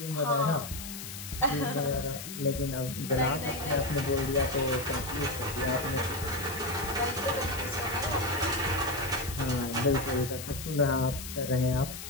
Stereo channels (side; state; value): left; noise; hiss, 9 dB below the sound